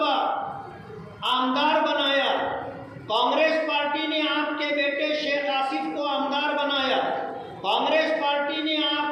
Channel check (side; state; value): both; identical; correlation 1.00